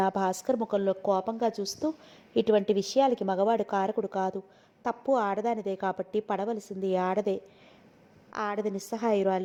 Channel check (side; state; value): both; identical; correlation 1.00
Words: భాస్కర్ ముఖంలో కోపంగా చూస్తూ. ఇటువంటి విషయాలకి మగవాడు కారకుడు కాదు. తప్పు ఆడదానిదే కాబట్టి పడవలసింది ఆడదే. ఆడది